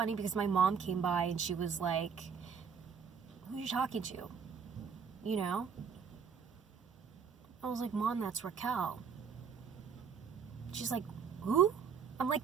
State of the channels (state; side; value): quieter; left; 6.5 dB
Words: because my mom came by and she was like, who are you talking to? I was like, Mom, that's Raquel. She's like, who? I'm